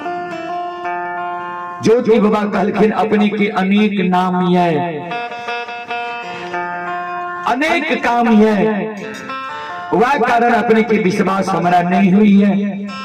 ज्योति बाबा कहलखिन अपने के अनेक नाम है, अनेक काम है, वह कारण अपने के विश्वास हमारा नहीं हुई है।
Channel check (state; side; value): identical; both; correlation 1.00